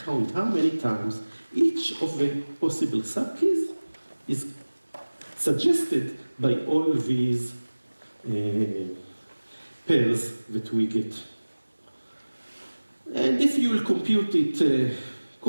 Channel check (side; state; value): both; inverted; correlation -1.00